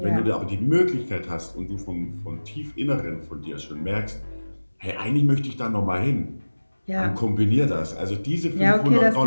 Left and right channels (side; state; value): both; inverted; correlation -1.00